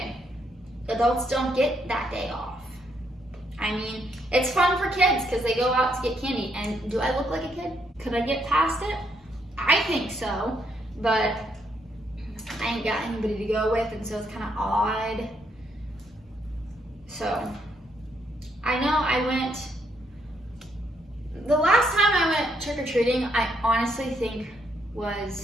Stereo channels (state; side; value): normal; both; correlation 0.74